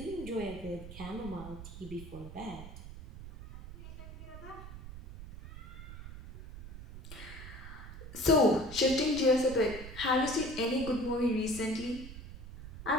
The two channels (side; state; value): right; noise; rumble, 12 dB below the sound